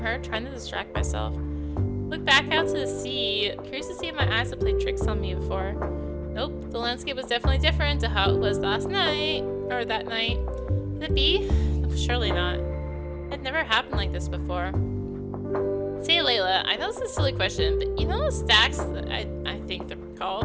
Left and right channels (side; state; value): both; identical; correlation 1.00